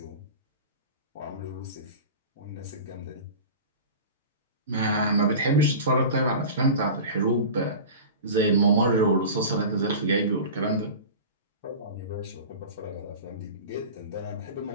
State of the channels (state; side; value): inverted; both; correlation -0.34